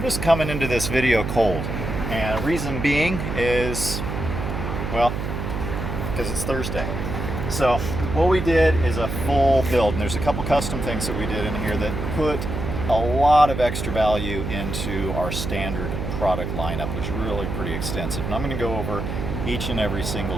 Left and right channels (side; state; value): right; noise; hum, 4 dB below the sound